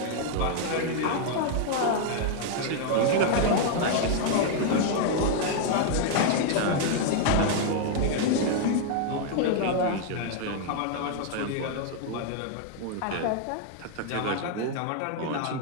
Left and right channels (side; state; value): both; different; correlation 0.00